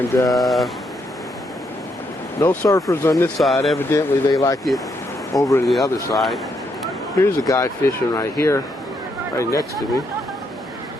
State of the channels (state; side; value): normal; both; correlation 0.77